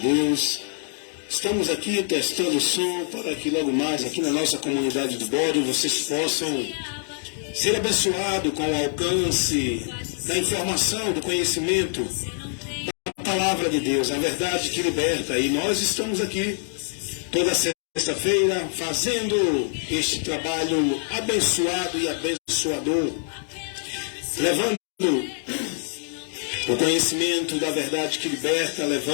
Estamos aqui testando o som para que logo mais aqui na nossa comunidade do Bode vocês possam ser abençoados com o alcance da informação, do conhecimento da Palavra de Deus, a verdade que liberta. E nós estamos aqui toda sexta-feira fazendo este trabalho abençoado e abençoador, levando o conhecimento da verdade que liberta,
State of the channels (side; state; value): right; silent; digital silence